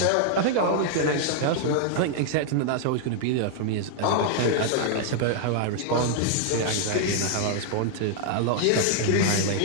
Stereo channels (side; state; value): both; different; correlation 0.00